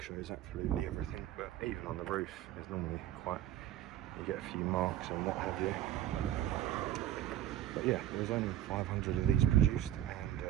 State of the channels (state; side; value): quieter; left; 12.4 dB